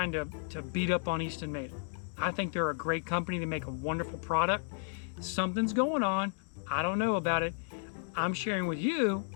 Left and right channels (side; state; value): right; silent; 56 dB below the other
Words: to beat up on Eastonmade. I think they're a great company. They make a wonderful product. Something's going on. I don't know about it. I'm sharing with you